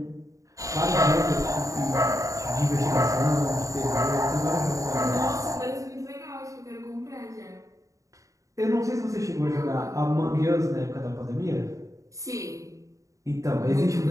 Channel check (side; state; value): left; late; 0.16 ms